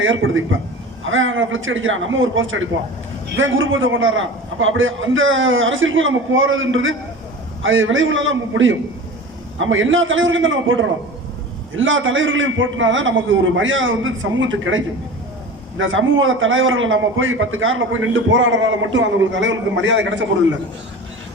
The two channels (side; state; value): both; normal; correlation 0.35